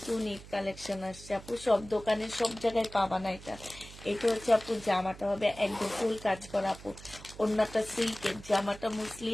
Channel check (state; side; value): noise; right; hum, 17 dB below the sound